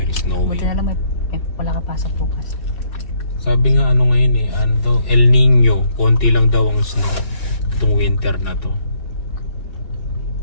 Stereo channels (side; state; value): right; late; 2.7 ms